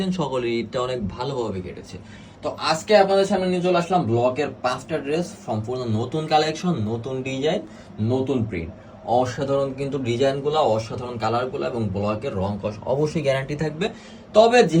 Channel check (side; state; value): both; identical; correlation 1.00